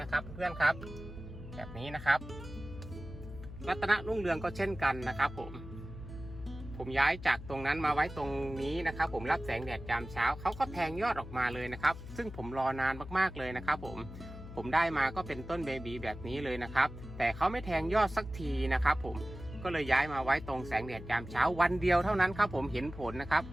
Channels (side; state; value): left; noise; hum, 12 dB below the sound